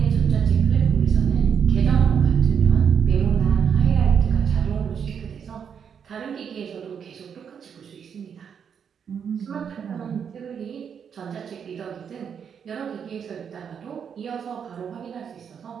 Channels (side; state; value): left; quieter; 7.4 dB